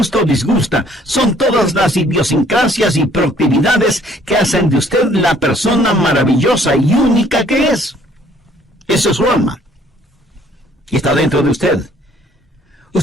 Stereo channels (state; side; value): normal; both; correlation 0.60